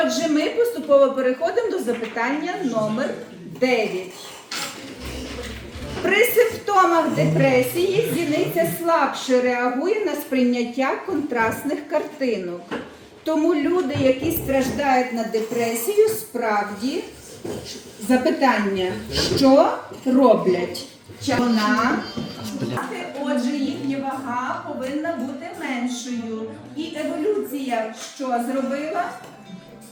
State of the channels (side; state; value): both; identical; correlation 1.00